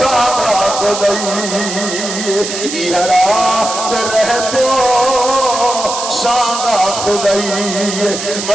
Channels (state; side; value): noise; right; hiss, 6 dB below the sound